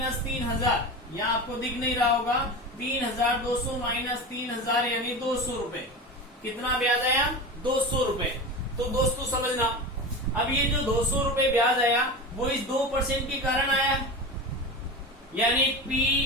3,000, यहाँ आपको दिख नहीं रहा होगा। 3,200 माइनस 3,000 यानी 200 रुपए। कितना ब्याज आया? 200 रुपए। तो दोस्तों समझना, अब ये जो 200 रुपए ब्याज आया वो इस 2% के कारण आया, यानी P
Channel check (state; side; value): normal; both; correlation 0.27